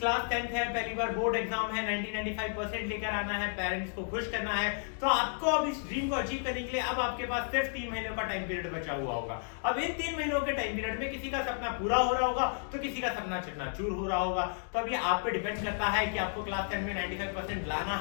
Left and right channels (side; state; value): right; silent; digital silence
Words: 10th है, पहली बार बोर्ड एग्जाम है, 90-95% लेकर आना है, पेरेंट्स को खुश करना है। तो आपको अब इस ड्रीम को अचीव करने के लिए अब आपके पास सिर्फ 3 महीनों का टाइम पीरियड बचा हुआ होगा। अब इन 3 महीनों के टाइम पीरियड में किसी का सपना पूरा हो रहा होगा तो किसी का सपना चकनाचूर हो रहा होगा। तो अब ये आप पे डिपेंड करता है कि आपको क्लास 10 में 95% लाना